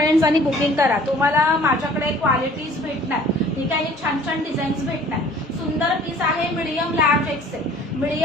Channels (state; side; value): normal; both; correlation 0.52